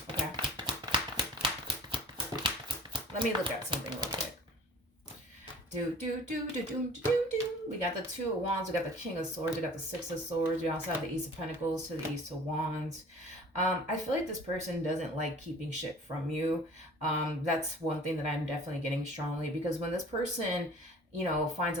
Okay. Let me look at something real quick. We got the Two of Wands, we got the King of Swords, we got the Six of Swords, we also have the Ace of Pentacles to the Ace of Wands. I feel like this person doesn't like keeping shit from you. That's one thing that I'm definitely getting strongly, because when this person, you know, finds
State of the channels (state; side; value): normal; both; correlation 0.46